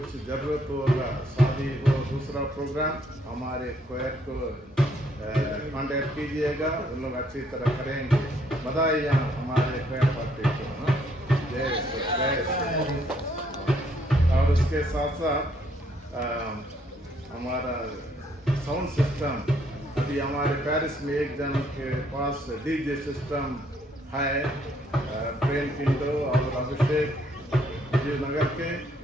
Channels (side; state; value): both; normal; correlation 0.68